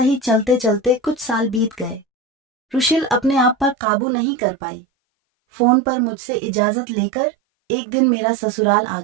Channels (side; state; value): left; drops out; at 3.8 s